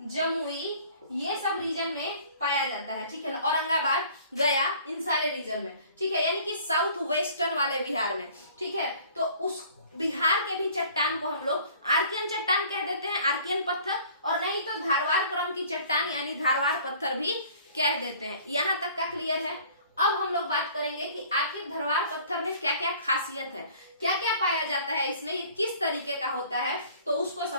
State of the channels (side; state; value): both; inverted; correlation -0.51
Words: जमुई ये सब रीजन में पाया जाता है, ठीक है, औरंगाबाद, गया इन सारे रीजन में, ठीक है, यानी कि साउथ वेस्टर्न वाले बिहार में, ठीक है। तो उस बिहार के भी चट्टान को हम लोग आर्कियन चट्टान कह देते हैं, आर्कियन पत्थर, और नहीं तो धारवाड़ क्रम की चट्टान यानी धारवाड़ पत्थर भी कह देते हैं। यहां तक का क्लियर है। अब हम लोग बात करेंगे कि आखिर धारवाड़ पत्थर में क्या क्या खासियत है, क्या क्या पाया जाता है इसमें, किस तरीके का होता है, तो उसको